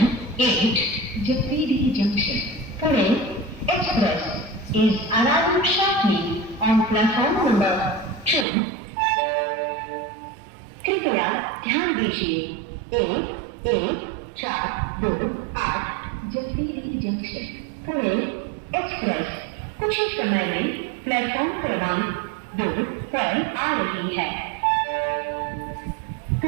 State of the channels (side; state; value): left; drops out; at 8.5 s